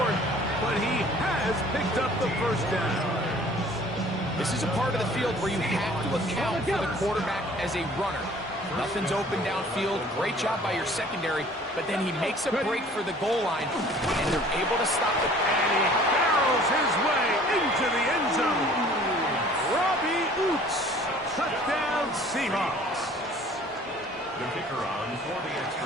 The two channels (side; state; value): both; normal; correlation 0.51